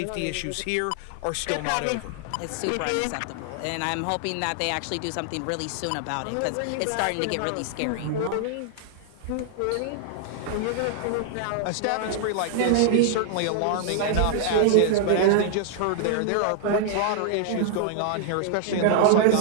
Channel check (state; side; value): different; both; correlation -0.01